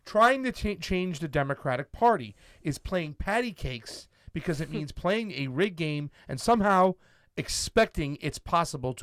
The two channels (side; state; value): both; identical; correlation 1.00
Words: trying to change the Democratic Party is playing patty cakes because it means playing a rigged game and somehow expecting it's possible